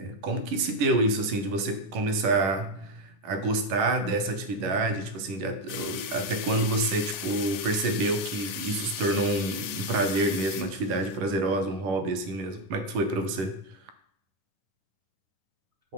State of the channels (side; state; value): left; late; 10 ms